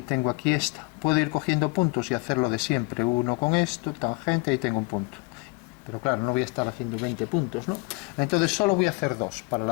tengo aquí esta. Puedo ir cogiendo puntos y hacerlo de siempre. Uno con esto, tangente, y tengo un punto. Pero claro, no voy a estar haciendo 20 puntos, ¿no? Entonces solo voy a hacer 2 para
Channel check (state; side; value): quieter; right; 28.5 dB